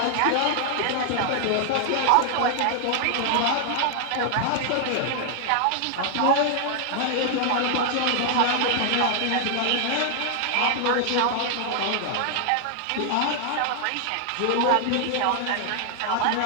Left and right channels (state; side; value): different; both; correlation 0.00